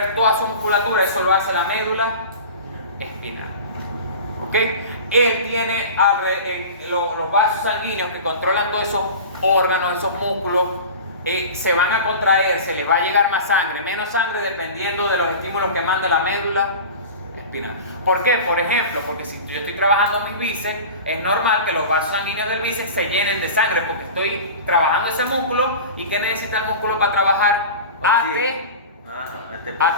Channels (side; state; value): both; inverted; correlation -0.34